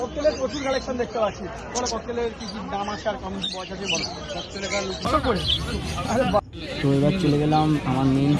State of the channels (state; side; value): identical; both; correlation 1.00